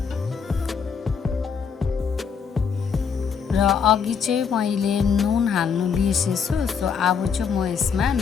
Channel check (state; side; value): quieter; right; 6.4 dB